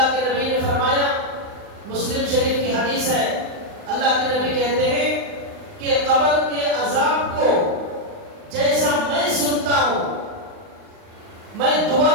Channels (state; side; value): late; left; 39 ms